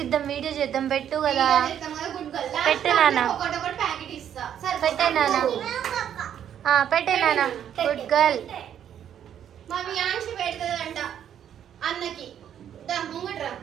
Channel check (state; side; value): quieter; left; 9.6 dB